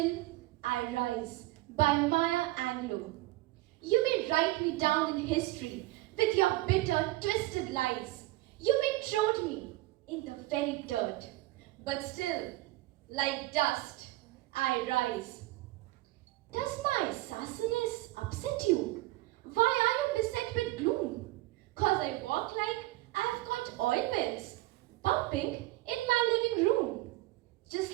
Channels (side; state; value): left; quieter; 18.6 dB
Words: I Rise by Maya Angelou. You may write me down in history with your bitter, twisted lies. You may trod me in the very dirt, but still, like dust, I rise. Does my sassiness upset you? Why are you beset with gloom? 'Cause I walk like I've got oil wells pumping in my living room, just